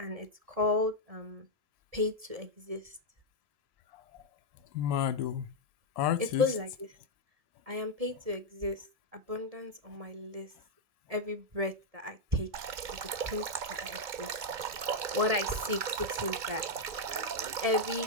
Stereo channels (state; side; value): late; left; 2.2 ms